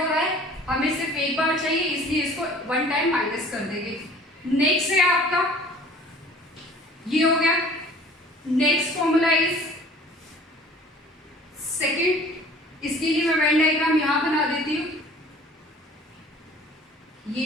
रहा है, हमें सिर्फ एक बार चाहिए, इसलिए इसको वन टाइम माइनस कर देंगे। नेक्स्ट है आपका, ये हो गया। नेक्स्ट फॉर्मूला इज सेकंड, इसके लिए मैं वेन डायग्राम यहां बना देती हूं, ये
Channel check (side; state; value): both; normal; correlation 0.49